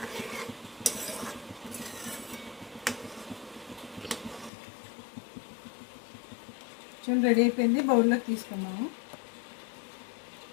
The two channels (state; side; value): drops out; right; at 4.5 s